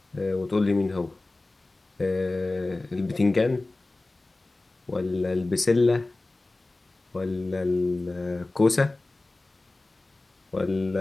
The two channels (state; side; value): quieter; right; 3.0 dB